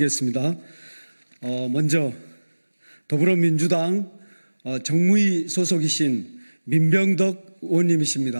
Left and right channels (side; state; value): both; inverted; correlation -1.00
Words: 먼저 더불어민주당 정무위 소속이신 민병덕